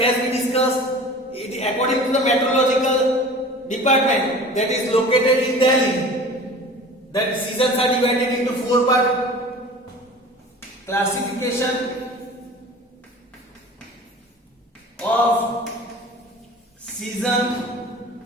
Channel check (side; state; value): both; normal; correlation 0.41